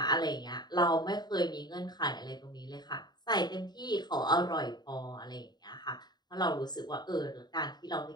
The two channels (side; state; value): right; late; 0.20 ms